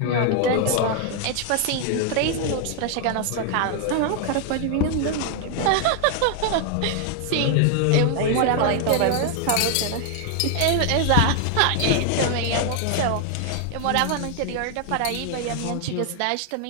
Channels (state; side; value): different; both; correlation 0.00